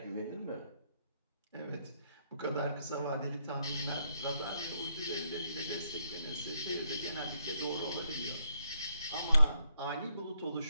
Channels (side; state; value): both; inverted; correlation -0.76